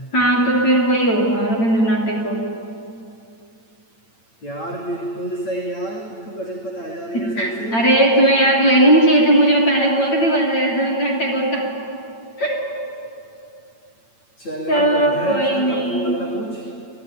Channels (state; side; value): late; right; 8.8 ms